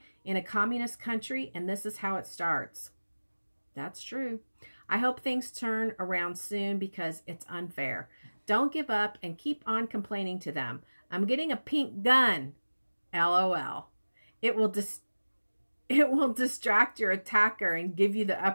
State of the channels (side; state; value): both; inverted; correlation -1.00